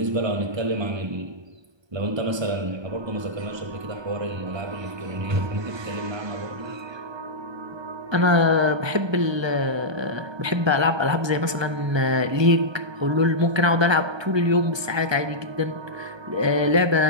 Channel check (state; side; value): late; left; 1.3 ms